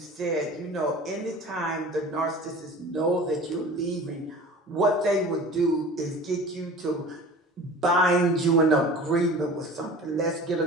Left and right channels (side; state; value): both; normal; correlation 0.40